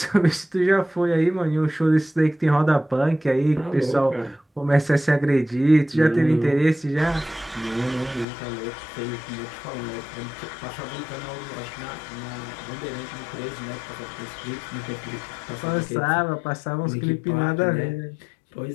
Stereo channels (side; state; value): right; drops out; at 8.2 s